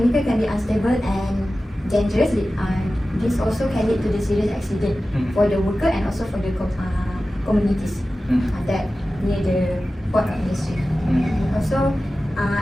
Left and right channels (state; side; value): normal; both; correlation 0.95